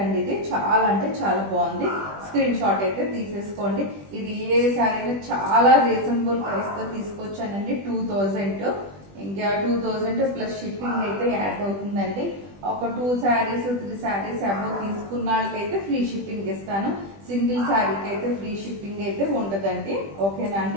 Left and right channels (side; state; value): left; late; 20 ms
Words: ఇది చాలా అంటే చాలా బాగుంది. స్క్రీన్ షాట్ అయితే తీసేసుకోండి. ఇది ఏ శారీ చాలా రీజనబుల్ ప్రైస్ తో తీసుకొచ్చానండి. 2000. ఇంకా 2000 ప్లస్ షిప్పింగ్ అయితే యాడ్ అవుతుందండి. ఒక 2 శారీస్ 3 శారీస్ అబౌవ్ తీసుకున్న వాళ్ళకైతే ఫ్రీ షిప్పింగ్ ఇస్తాను. సింగిల్ శారీకి అయితే ఫ్రీ షిప్పింగ్ అయితే ఉండదండి. ఓకేనా